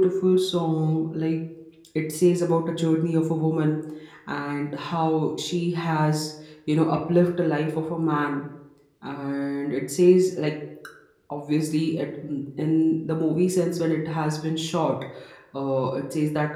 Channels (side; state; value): both; identical; correlation 1.00